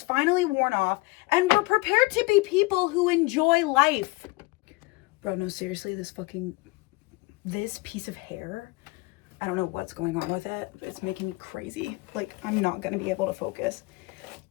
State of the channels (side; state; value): right; quieter; 23.9 dB